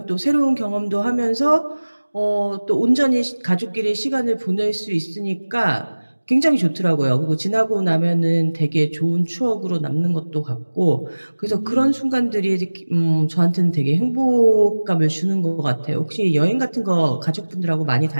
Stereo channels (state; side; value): inverted; both; correlation -1.00